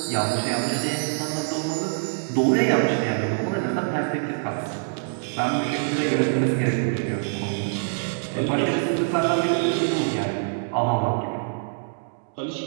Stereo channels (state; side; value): silent; left; digital silence